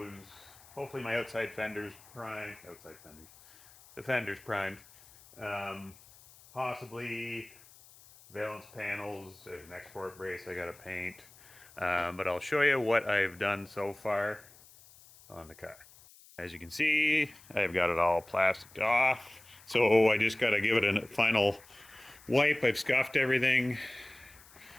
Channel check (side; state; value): left; noise; hiss, 24 dB below the sound